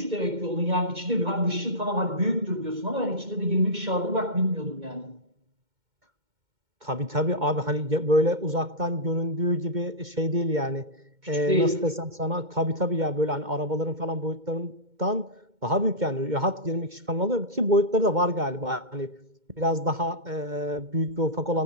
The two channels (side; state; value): left; late; 2.2 ms